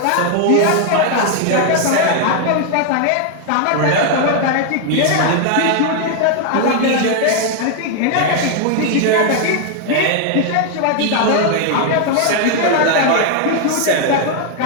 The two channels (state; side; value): different; both; correlation 0.00